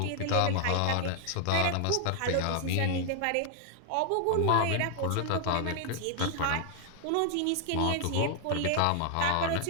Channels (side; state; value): both; different; correlation 0.00